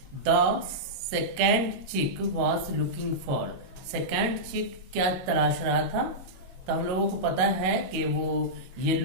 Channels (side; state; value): left; late; 22 ms